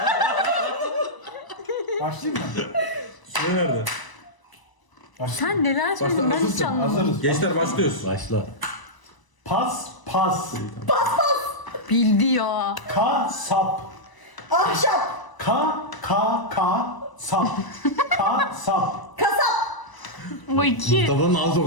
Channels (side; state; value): right; late; 1.0 ms